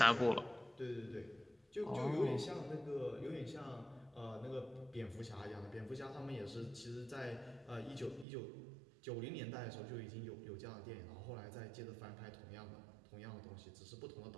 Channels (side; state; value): left; drops out; at 8.2 s